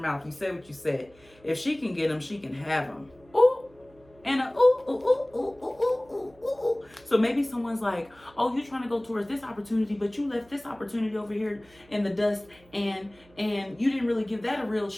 You said what you said. If she can get them, she can have them. Ooh. And a ooh, ooh, ooh, ooh, ooh, ooh, ooh, ooh. So maybe someone's like, oh, you're trying to go towards this opportunity, but you left this opportunity over here in the dust and you didn't really give that a real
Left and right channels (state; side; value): noise; right; hum, 28 dB below the sound